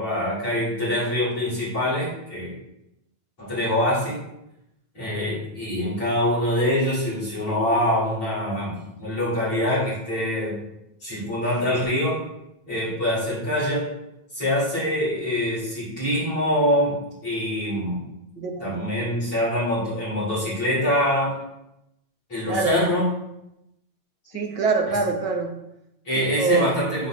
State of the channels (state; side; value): late; right; 9.0 ms